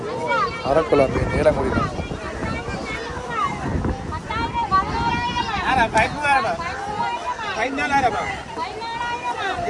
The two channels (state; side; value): identical; both; correlation 1.00